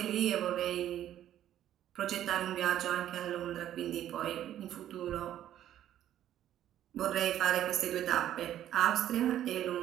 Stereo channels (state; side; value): quieter; left; 11.7 dB